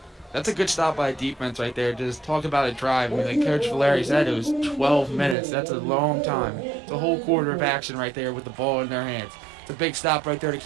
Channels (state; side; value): drops out; left; at 5.4 s